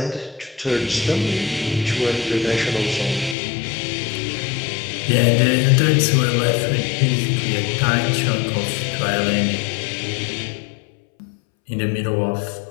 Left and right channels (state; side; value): drops out; right; at 3.4 s